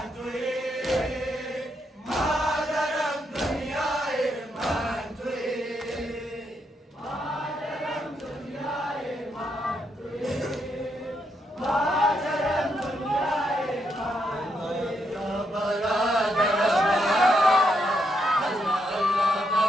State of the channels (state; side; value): normal; both; correlation 0.79